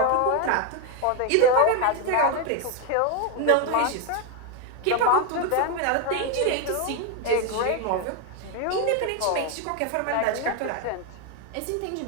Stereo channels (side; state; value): both; different; correlation 0.01